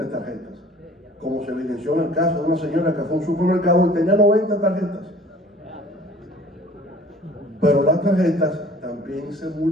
tarjetas, como se evidenció en el caso de una señora que fue a un supermercado y tenía 90 tarjetas. Pero las tarjetas también se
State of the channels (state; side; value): normal; both; correlation 0.49